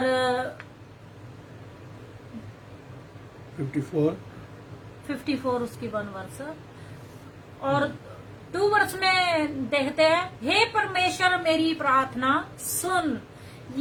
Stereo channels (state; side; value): identical; both; correlation 1.00